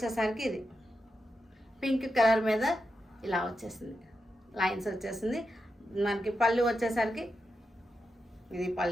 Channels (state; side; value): normal; both; correlation 0.87